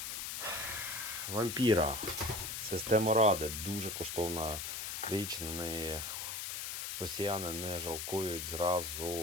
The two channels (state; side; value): noise; left; hiss, 4 dB below the sound